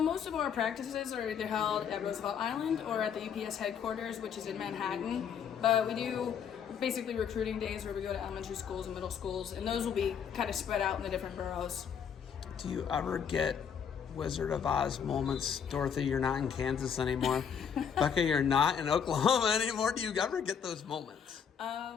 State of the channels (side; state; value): right; quieter; 7.5 dB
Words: most of our practices are either held at Roosevelt Island or at the UPS headquarters, which is in Manhattan. But we do basically recruiting days where we go to elementary schools and middle schools, and those will be kind of spread out in the different boroughs. Do you ever get Wizard of Oz moments? Dorothy, you're not in Kansas anymore. Becca, you're not in Oklahoma anymore. Do you ever get those moments?